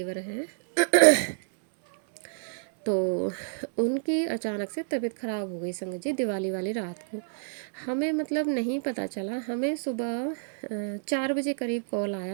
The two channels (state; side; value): silent; left; 59 dB below the other